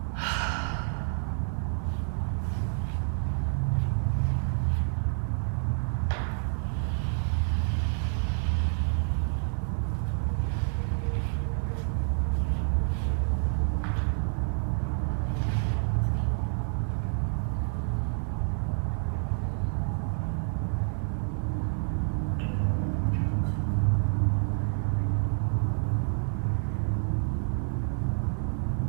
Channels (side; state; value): left; silent; digital silence